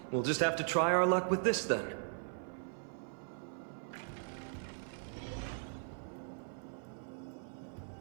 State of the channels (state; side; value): silent; left; 52 dB below the other